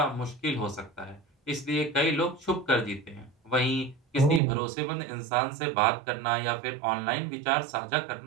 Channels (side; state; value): left; drops out; at 4.4 s